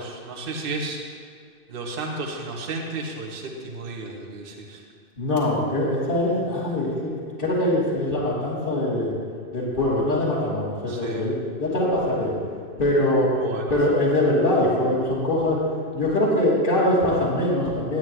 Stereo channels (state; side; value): late; left; 2.6 ms